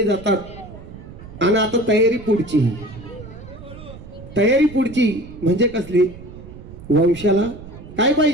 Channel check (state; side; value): noise; right; rumble, 16 dB below the sound